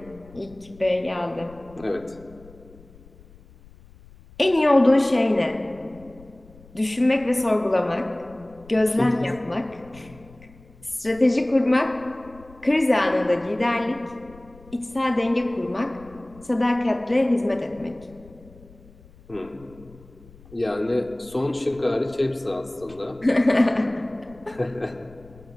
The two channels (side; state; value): left; noise; rumble, 23 dB below the sound